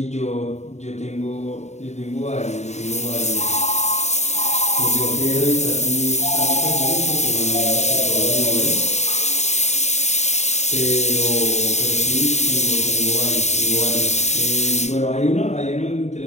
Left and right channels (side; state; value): right; late; 0.33 ms